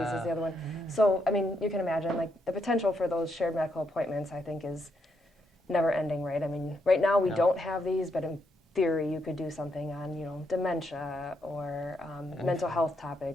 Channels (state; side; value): normal; both; correlation 0.79